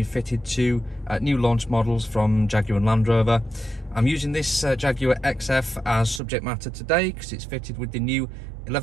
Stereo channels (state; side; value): drops out; left; at 6.2 s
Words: fitted to new launch models from Jaguar Land Rover. I'm using this Jaguar XF as subject matter today because it's fitted with the new